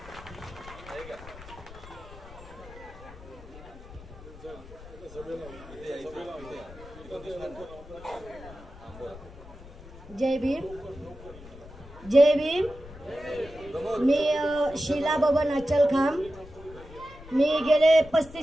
जय भीम, जय भीम। मी शीला बबन अचलखाम। मी गेले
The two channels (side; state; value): left; noise; rumble, 17 dB below the sound